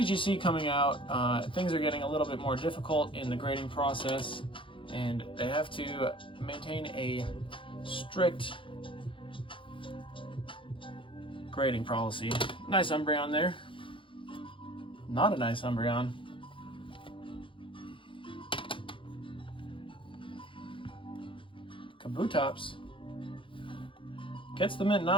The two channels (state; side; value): late; right; 0.25 ms